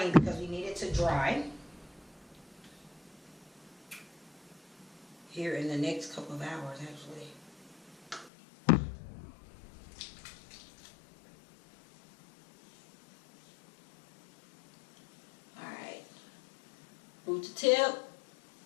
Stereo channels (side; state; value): right; drops out; at 8.3 s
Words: because we need it to dry here in the next couple of hours, actually. Root to tip,